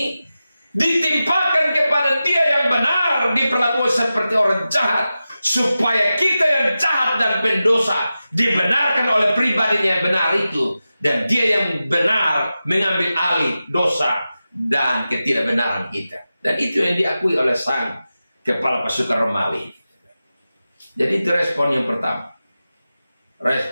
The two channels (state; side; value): inverted; both; correlation -0.93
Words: ditimpakan kepada dia yang benar, diperlakukan seperti orang jahat. Supaya kita yang jahat dan pendosa dibenarkan oleh pribadinya yang benar itu. Dan dia yang benar mengambil alih dosa dan ketidakbenaran kita. Dan itu yang diakui oleh sang kepala pasukan Romawi. Jadi itu respon yang pertama.